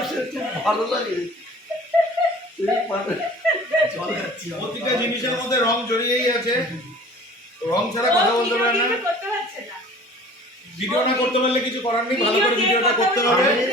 খুব ভালো লাগে, প্রতিটা জিনিসের মধ্যে রং জড়িয়েই আছে, রং ছাড়া কথা বলতে পারে না। ভিডিও না করতে পারলে কিছু করার নেই, ভালো করে ভিডিওটা করতে হবে।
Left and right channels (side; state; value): both; normal; correlation 0.46